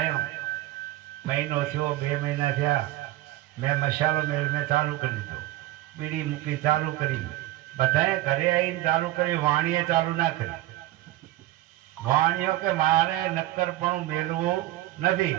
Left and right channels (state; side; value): quieter; left; 15.7 dB